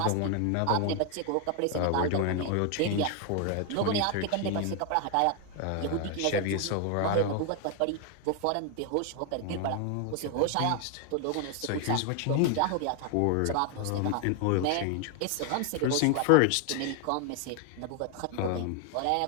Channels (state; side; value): different; both; correlation 0.00